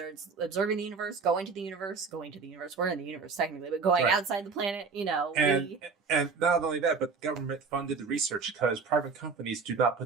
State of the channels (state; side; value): quieter; left; 4.9 dB